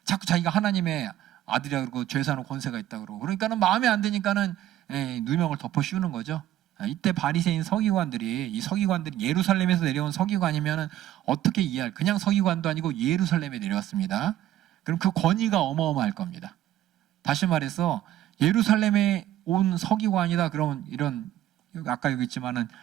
자꾸 자기가 하나님의 아들이라 그러고 죄 사는 권세가 있다 그러고, 그러니까는 마음에 안 드니까는 누명을 덮어 씌우는 거죠. 이때 바리새인 서기관들이, 이 서기관들이 예루살렘에서 내려온 서기관이면은 어떻게 이해할, 그냥 서기관도 아니고 예루살렘에 내려왔습니다. 그럼 그 권위가 어마어마할 겁니다. 다시 말해서 예루살렘에 온 서기관이다 그러면 이런 아까 여기 있지만은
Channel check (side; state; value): left; quieter; 13.0 dB